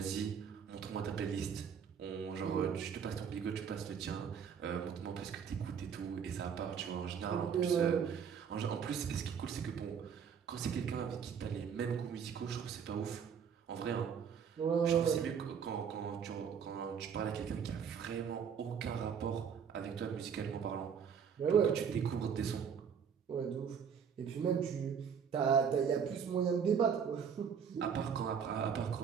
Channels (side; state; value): left; quieter; 7.2 dB